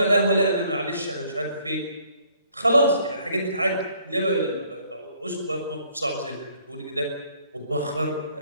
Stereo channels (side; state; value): both; inverted; correlation -0.63